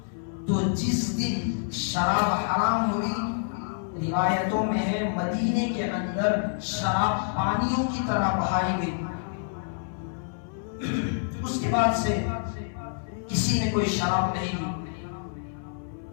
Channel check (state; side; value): silent; right; 60 dB below the other